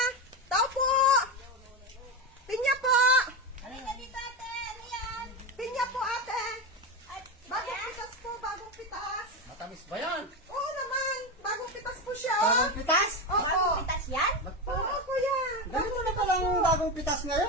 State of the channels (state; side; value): normal; both; correlation 0.16